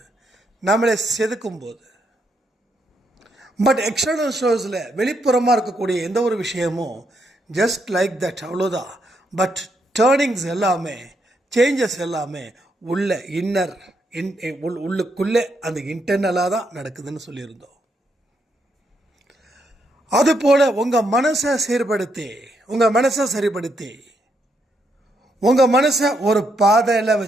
நம்மளை செதுக்கும் போது. பட் எக்ஸ்டர்னல் ஷோஸில் வெளிப்புறமாக இருக்கக்கூடிய எந்த ஒரு விஷயமும் ஜஸ்ட் லைக் தட், அவ்வளோதான். பட் டேர்னிங்ஸ் எல்லாமே, சேஞ்சஸ் எல்லாமே உள்ள இன்னர் உள்ளுக்குள்ளே அந்த இன்டர்னலாக தான் நடக்குதுன்னு சொல்லியிருந்தோம். அதுபோல் உங்கள் மனசை சீர்படுத்தி, உங்கள் மனசை சரிப்படுத்தி, உங்கள் மனசை ஒரு பாதையில்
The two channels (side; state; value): both; normal; correlation 0.78